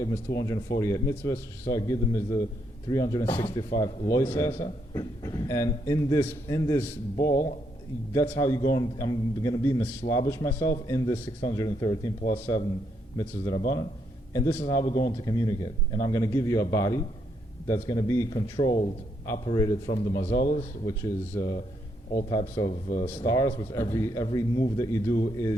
is 248 mitzvahs. Shisar Giddim is the 365 loisasa. And in this ball, that's how you go. I'm going to be mislabish myself in this 613 plus 7 mitzvahs Rabbanan. And this is how we're going to communicate. And I'm going to give you a body that's going to be controlled, operated from the mazalas, which is all types of stars, which every move that you do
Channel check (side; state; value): both; normal; correlation 0.76